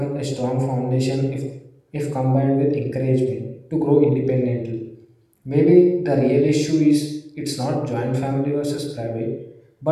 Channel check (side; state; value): both; identical; correlation 1.00